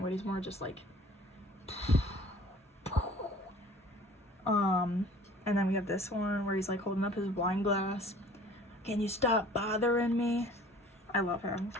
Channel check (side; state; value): both; normal; correlation 0.49